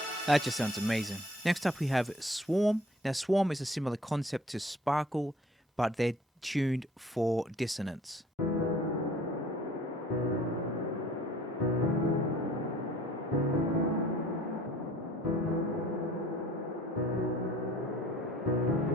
That just sounds amazing. Next up we have Swarm. Now Swarm is a similar concept to Sparkle, but they're tuned for dissonance.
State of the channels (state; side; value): normal; both; correlation 0.53